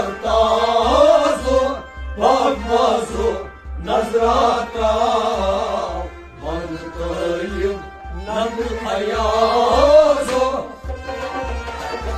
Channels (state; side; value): identical; both; correlation 1.00